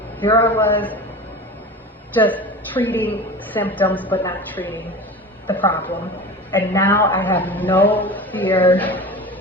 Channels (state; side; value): normal; both; correlation 0.33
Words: here I was just treating symptoms but not treating the problem. And now I have no fear